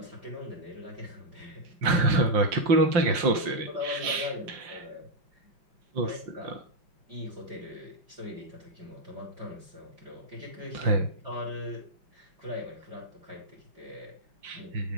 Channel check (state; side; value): late; left; 5.7 ms